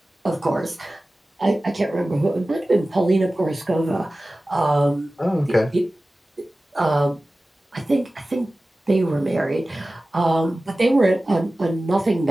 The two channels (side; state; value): both; normal; correlation 0.96